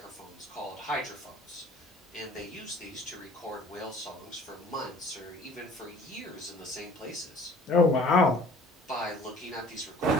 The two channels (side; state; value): both; normal; correlation 0.50